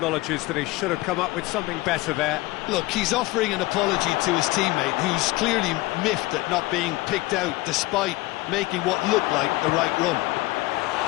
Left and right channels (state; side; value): quieter; right; 20.1 dB